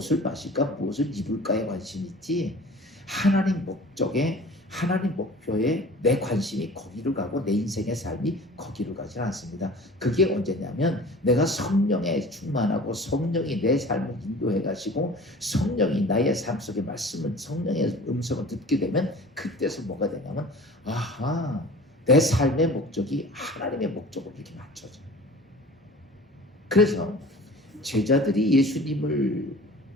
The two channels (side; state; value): both; normal; correlation 0.43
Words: 마실까 무엇을 입을까에 관심이 있지 하나님 목적에, 하나님 목표에 내 관심이 거기로 가고 내 인생의 삶이 거기로 가지 않습니다. 그게 언제냐면 내가 성령에 충만하고 성령이 내 삶을 인도해 가시고 성령이 나의 삶 속에 말씀을, 성령의 음성을 듣게 되면 그때서 뭐가 되냐면 아하, 내 삶의 목적이 하나님의 목적으로 이렇게 맞춰져요. 그래서 제자들이 예수님을